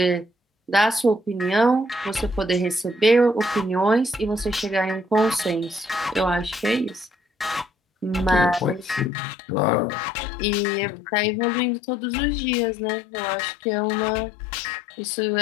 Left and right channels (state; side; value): drops out; right; at 9.1 s